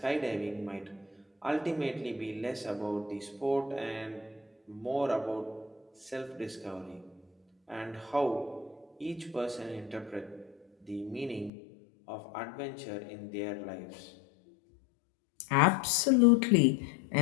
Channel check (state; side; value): drops out; right; at 11.5 s